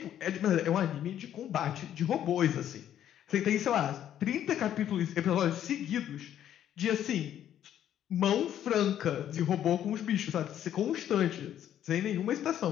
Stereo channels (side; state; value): right; quieter; 10.7 dB